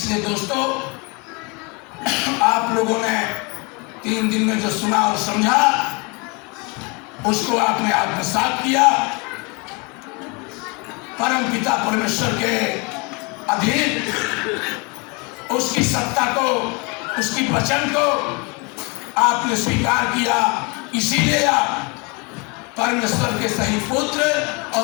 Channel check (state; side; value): quieter; right; 30.0 dB